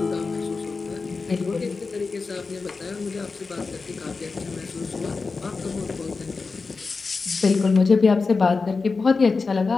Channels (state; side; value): quieter; right; 4.3 dB